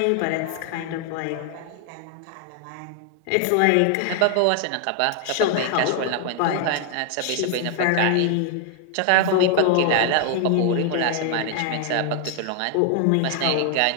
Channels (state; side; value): different; both; correlation 0.00